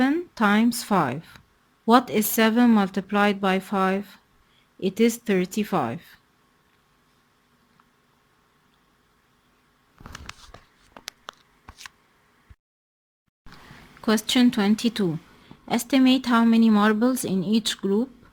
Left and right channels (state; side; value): identical; both; correlation 1.00